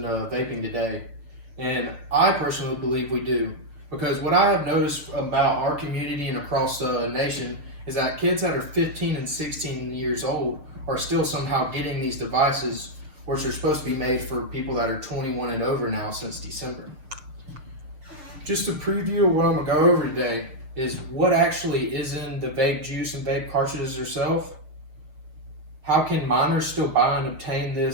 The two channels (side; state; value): left; late; 6.5 ms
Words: vaping today? And I personally believe we do. Because what I have noticed about our community and across the nation is that kids that are 15 and 16 years old are still somehow getting these devices, which are supposed to be made for people that are 21 and over now since December. Just a preview of what I'm going to go over today is what actually is in the vape juice and vape cartridges themselves. How can minors still buy and obtain